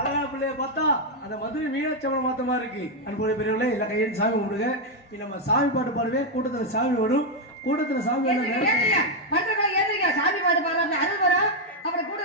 பிள்ளைய பார்த்தா அந்த மதுரை மீனாட்சியம்மன் மாத்த மாதிரி இருக்கு. அன்புடைய பெரியவர்களே எல்லாம் கையெழுத்து சாமி கும்பிடுங்க. நம்ம சாமி பாட்டு பாடுவே, கூட்டத்துல சாமி வரும். கூட்டத்துல சாமி சாமி பாட்டு பாடுறாங்க, அது வரும். அப்புறம்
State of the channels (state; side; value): normal; both; correlation 0.02